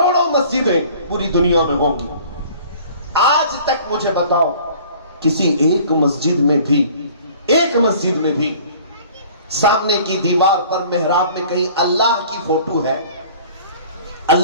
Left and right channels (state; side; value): inverted; both; correlation -0.49